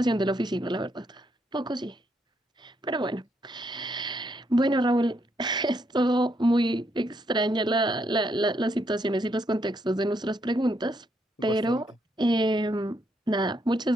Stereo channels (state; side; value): normal; both; correlation 0.76